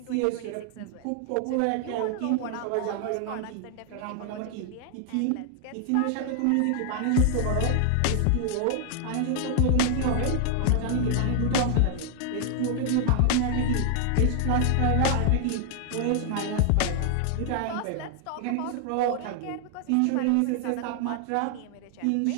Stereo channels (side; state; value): both; different; correlation 0.00